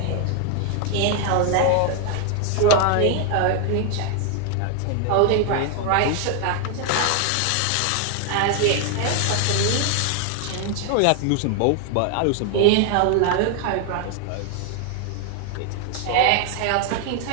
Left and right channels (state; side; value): different; both; correlation 0.00